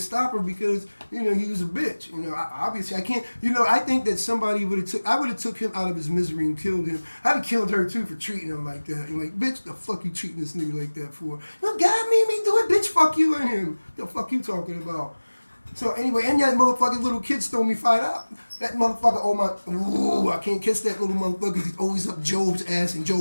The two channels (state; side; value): inverted; both; correlation -1.00